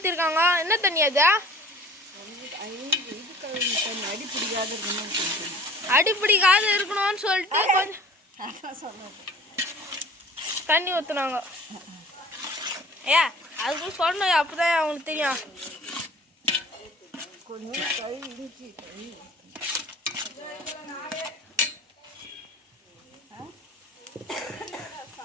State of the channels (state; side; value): normal; both; correlation 0.46